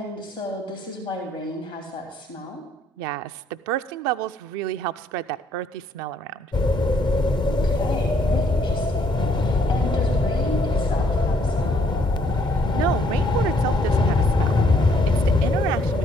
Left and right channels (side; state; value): both; normal; correlation 0.67